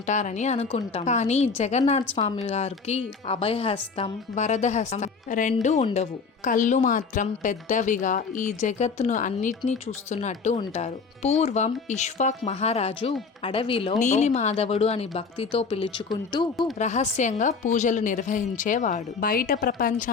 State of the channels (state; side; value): quieter; right; 5.0 dB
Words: అనుకుంటాం. కానీ జగన్నాథ్ స్వామి గారికి అభయహస్తం, వరద హస్తం రెండు ఉండవు. కళ్ళు మాత్రం పెద్దవిగా ఈ జగత్తును అన్నిటినీ చూస్తున్నట్టు ఉంటారు. పూర్వం ఇష్వాక్ మహారాజు అడవిలో నీలిమాధవుడు అని భక్తితో పిలుచుకుంటూ రహస్యంగా పూజలు నిర్వహించేవాడు. బయట